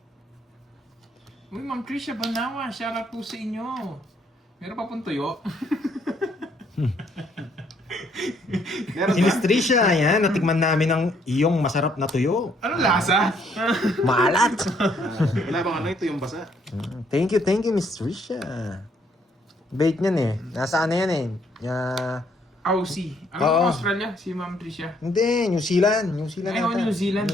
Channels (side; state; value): both; normal; correlation 0.68